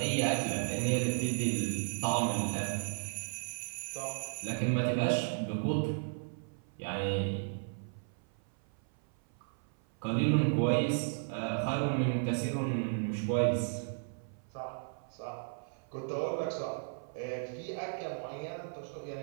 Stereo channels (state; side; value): silent; left; 55 dB below the other